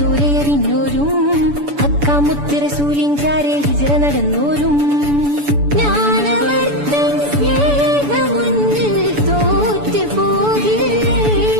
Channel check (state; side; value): late; left; 7.0 ms